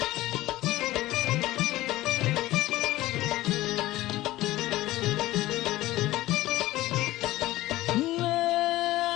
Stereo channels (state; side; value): quieter; right; 16.8 dB